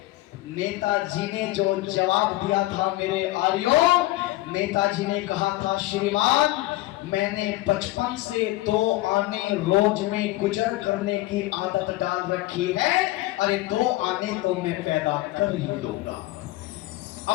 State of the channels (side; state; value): right; quieter; 18.1 dB